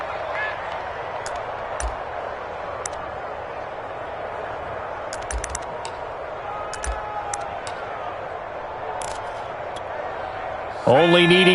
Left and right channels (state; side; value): identical; both; correlation 1.00